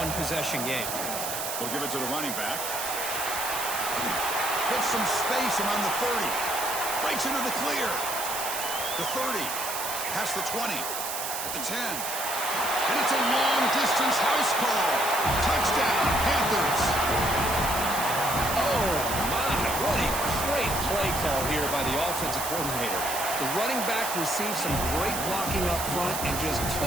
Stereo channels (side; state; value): right; noise; hiss, 4 dB below the sound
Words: game. We'll give it to the running back. Gets some space around the 30. Breaks into the clear. The 30. Past the 20. At the 10. And it's a long-distance house call. Touchdown, Panthers. Oh, my. What a great play call here by the offensive coordinator. The running back received some great blocking up front and just